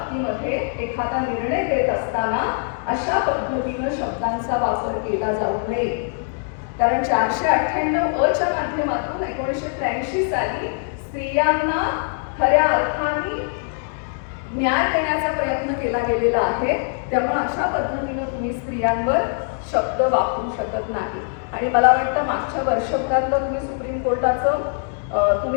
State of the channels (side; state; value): right; silent; 64 dB below the other